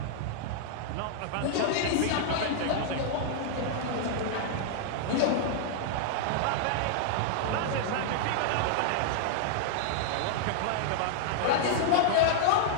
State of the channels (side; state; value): both; different; correlation -0.01